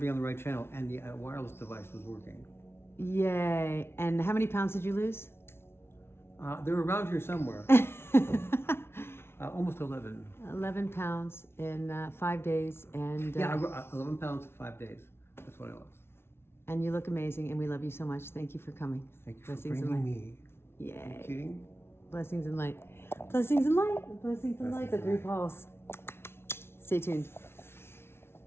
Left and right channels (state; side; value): late; right; 0.12 ms